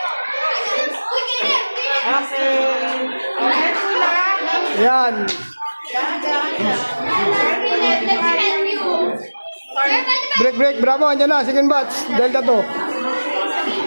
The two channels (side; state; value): both; inverted; correlation -1.00